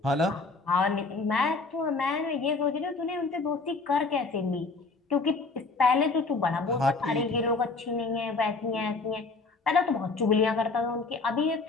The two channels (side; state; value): right; quieter; 3.9 dB